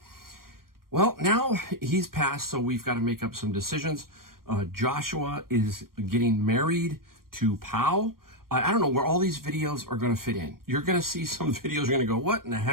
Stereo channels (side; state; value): left; late; 0.92 ms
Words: Well, now he's passed, so we've got to make up some decisions. Joshua is getting married to Pau. I don't know where all these videos are going to fit in. You're going to see some videos, you're going to go, what in the